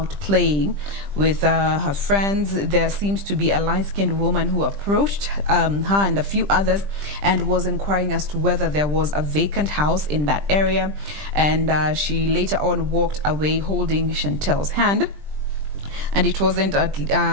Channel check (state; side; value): late; left; 20 ms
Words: playing with her friends, there seems to be a light-skinned woman who approached her and a few others and was inquiring as to whether there was a vacant house in that area. And she later on walked away holding Chantel's hand. And it wasn't